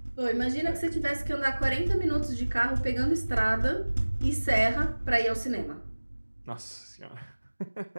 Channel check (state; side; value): inverted; both; correlation -1.00